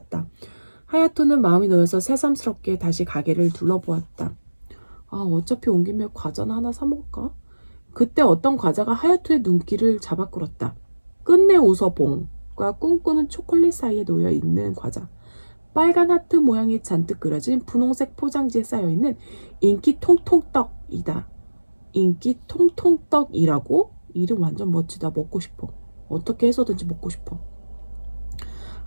하야토는 마음이 놓여서 새삼스럽게 다시 가게를 둘러보았다. 아, 어차피 온 김에 과자나 하나 사 먹을까? 그때 어떤 과자가 하야토의 눈길을 잡아 끌었다. 끝내 웃어봉과 꿈꾸는 초콜릿 사이에 놓여 있는 과자. 빨간 하트 모양이 잔뜩 그려진 분홍색 포장지에 쌓여있는 인기 통통떡이다. 인기 통통떡이라고? 이름 완전 멋지다. 먹고 싶어. 어떻게 해서든지 먹고 싶어.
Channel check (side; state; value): both; inverted; correlation -1.00